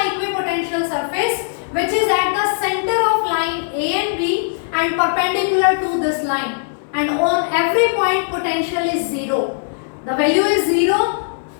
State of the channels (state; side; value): silent; right; digital silence